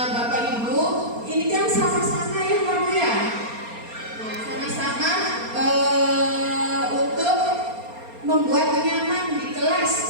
Bapak Ibu, ini kan sama-sama ya Pak Bu ya. Nah, sama-sama untuk membuat nyaman di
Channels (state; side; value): late; left; 4.3 ms